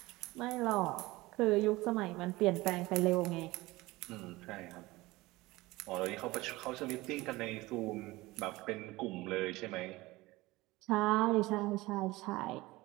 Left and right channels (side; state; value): left; quieter; 20.1 dB